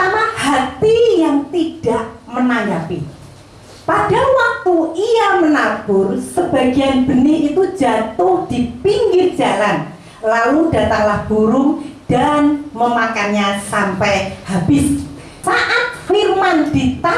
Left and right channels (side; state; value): both; identical; correlation 1.00